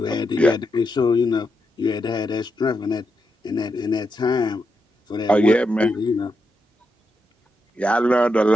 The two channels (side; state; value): both; normal; correlation 0.84